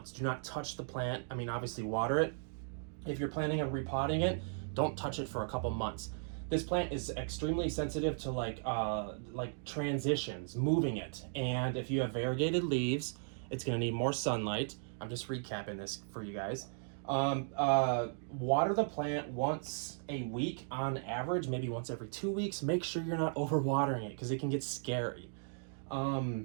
Do not touch the plant. I mean, obviously water it. If you're planning on repotting it, don't touch it for a couple months. This plant is extremely sensitive to like transitions, moving it. And if you have variegated leaves, it's gonna need more sunlight. I'm just recapping this for you guys. Water the plant once a week on average, maybe once every 2 weeks. Make sure you're not overwatering it because it can get scary.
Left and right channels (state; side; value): silent; left; digital silence